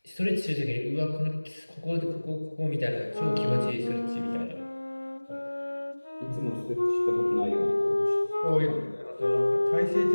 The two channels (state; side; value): inverted; both; correlation -1.00